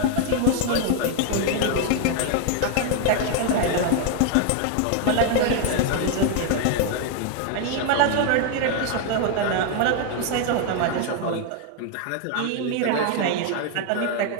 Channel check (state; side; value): different; both; correlation 0.00